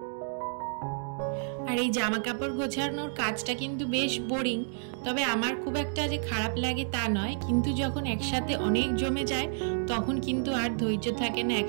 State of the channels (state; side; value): silent; left; digital silence